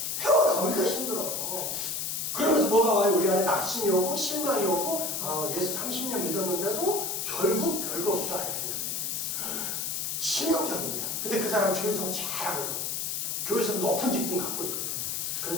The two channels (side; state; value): left; noise; hiss, 2 dB below the sound